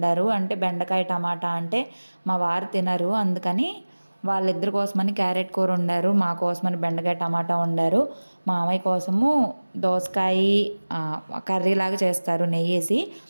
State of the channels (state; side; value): inverted; both; correlation -1.00